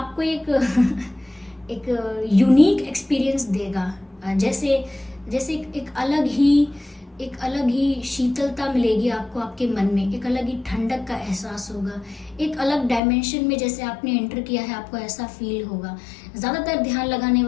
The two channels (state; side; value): drops out; right; at 13.0 s